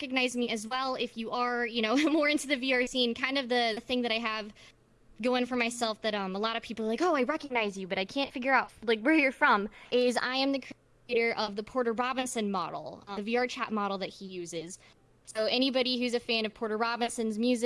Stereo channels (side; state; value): both; identical; correlation 1.00